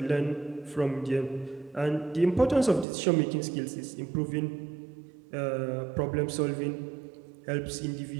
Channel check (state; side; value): drops out; left; at 2.9 s